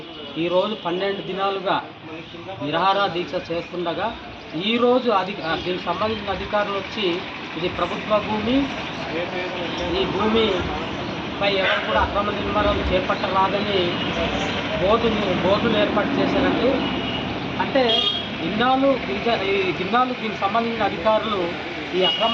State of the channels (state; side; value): identical; both; correlation 1.00